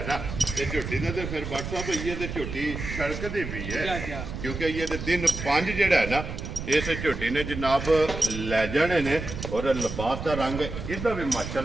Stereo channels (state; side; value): noise; right; rumble, 7 dB below the sound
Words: ਨਾ ਇਹ ਝੋਟੀ ਦਾ ਤੇ ਫਿਰ WhatsApp ਹੋਈ ਹੈ ਤੇ ਝੋਟੀ ਸੜਕਦੀ ਵੀ ਜਾ ਹੈ ਜਾ ਕਿਉਂਕਿ ਇਹ ਤੇ ਦਿਨ 5 ਜਿਹੜਾ ਹੈ ਨਾ ਇਸ ਝੋਟੀ ਨੇ ਜਨਾਬ ਲੈ ਜਾਣੇ ਨੇ। ਔਰ ਲਿਬਾਸ ਦਾ ਰੰਗ ਇਹਦਾ ਵੀ